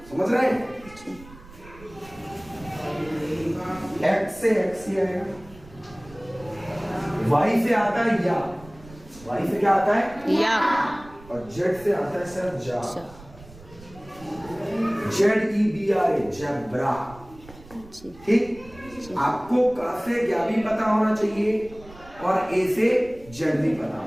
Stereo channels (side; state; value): right; noise; rumble, 21 dB below the sound